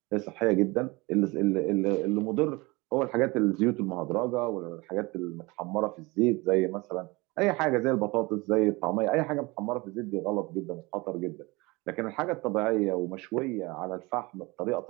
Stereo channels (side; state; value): left; quieter; 24.2 dB